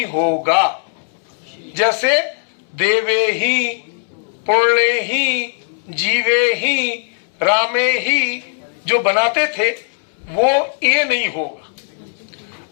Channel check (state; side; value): silent; right; 67 dB below the other